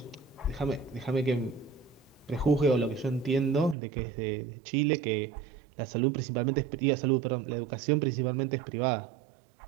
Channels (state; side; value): drops out; left; at 3.8 s